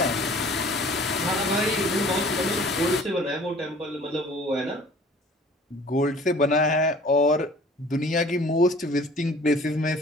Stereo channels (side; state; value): both; normal; correlation 0.50